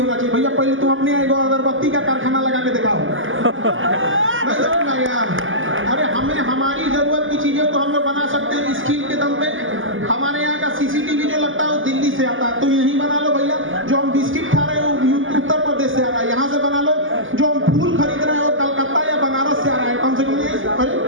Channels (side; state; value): left; late; 0.58 ms